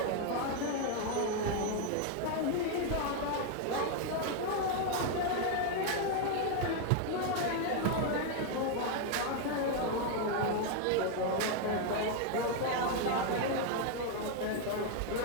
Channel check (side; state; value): both; different; correlation 0.01